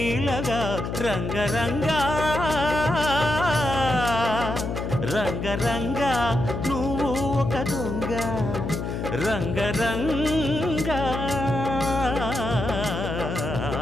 రంగరంగ రంగరంగ నువ్వు ఒక దొంగ, రంగరంగ.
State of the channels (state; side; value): noise; left; hum, 4 dB below the sound